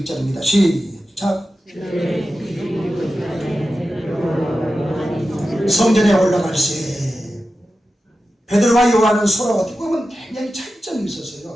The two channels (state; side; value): normal; both; correlation 0.92